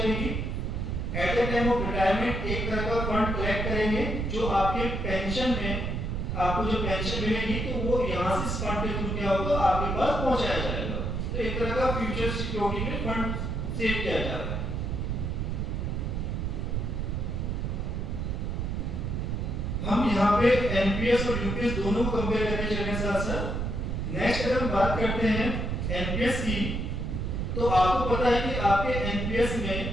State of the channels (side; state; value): right; noise; rumble, 1 dB below the sound